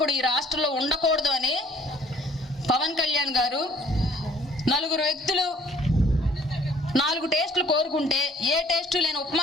ఈ రాష్ట్రంలో ఉండకూడదు అని పవన్ కళ్యాణ్ గారు 4 వ్యక్తులు 4 టేస్టులు కోరుకుంటే ఏ టేస్టు లేని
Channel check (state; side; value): normal; both; correlation 0.57